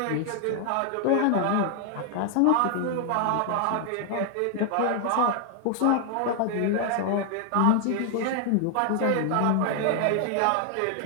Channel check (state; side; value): different; both; correlation 0.00